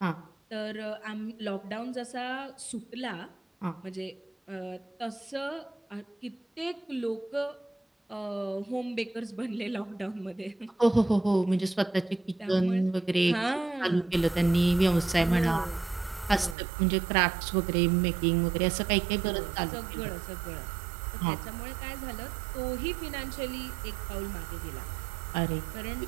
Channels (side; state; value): left; drops out; at 16.6 s